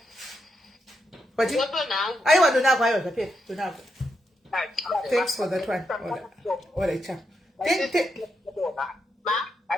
aiwa donako aiwa zvapera donako thanks for that one all right chap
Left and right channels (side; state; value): both; normal; correlation 0.83